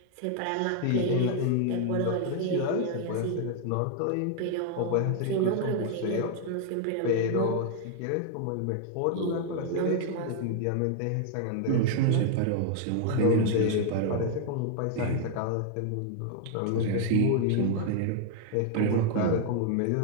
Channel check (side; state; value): both; different; correlation 0.00